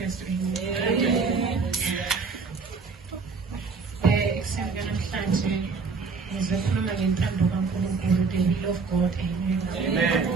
Kristu. Ekuseni namhlanje ngizokhuluma ngentando kaNkulunkulu, the will of God. Amen.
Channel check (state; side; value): quieter; left; 4.7 dB